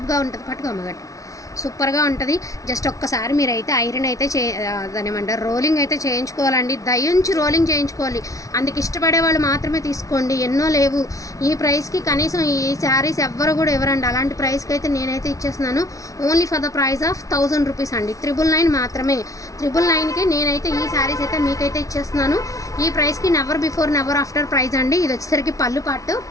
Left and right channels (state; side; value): late; right; 0.16 ms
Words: ఉంటుంది. పట్టుకో అమ్మగట్టు, సూపర్గా ఉంటుంది. జస్ట్ ఒక్కసారి మీరైతే ఐరన్ అయితే దాని ఏమంటారు, రోలింగ్ అయితే చేయించుకోవాలండి. దయించి రోలింగ్ చేయించుకోవాలి. అందుకు ఇష్టపడే వాళ్ళు మాత్రమే తీసుకోండి. ఎన్నో లేవు ఈ ప్రైస్కి. కనీసం ఈ శారీస్ ఎవ్వరు కూడా ఇవ్వరండి. అలాంటి ప్రైస్కి అయితే నేనైతే ఇచ్చేస్తున్నాను. Only for the price of 1000 rupees అండి. 999 మాత్రమే. 999కి నేనైతే ఈ శారీస్ అయితే మీకైతే ఇచ్చేస్తున్నాను. ఈ ప్రైస్కి never before never after price అండి. ఇది వచ్చేసరికి పళ్ళు పాటు,